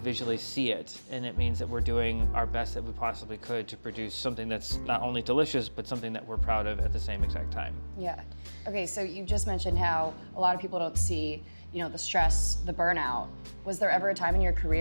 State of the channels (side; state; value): both; inverted; correlation -1.00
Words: see it. And it means that we're doing our best that we possibly could to produce something that's not only delicious, but something that we're proud of at the same exact time. Yeah. Okay, so you just mentioned how a lot of people don't see, you know, the stress, the burnout. Was there ever a time in your